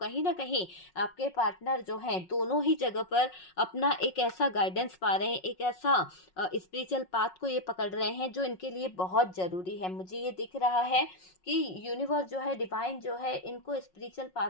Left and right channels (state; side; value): late; right; 5.5 ms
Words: ना कहीं आपके पार्टनर जो हैं दोनों ही जगह पर अपना एक ऐसा गाइडेंस पा रहे हैं, एक ऐसा स्पिरिचुअल पाथ को ये पकड़ रहे हैं जो इनके लिए बहुत जरूरी है। मुझे ये दिख रहा है कि यूनिवर्स जो है, डिवाइन जो है, इनको स्पिरिचुअल पाथ